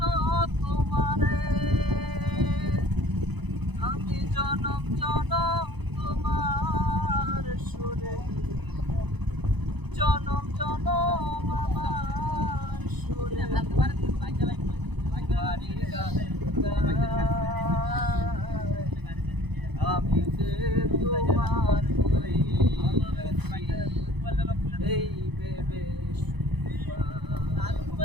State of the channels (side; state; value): left; late; 0.99 ms